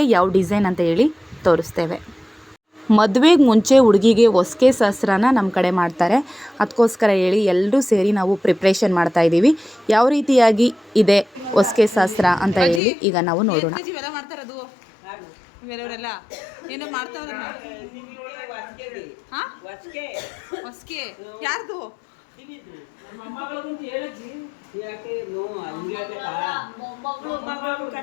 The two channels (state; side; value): drops out; right; at 12.8 s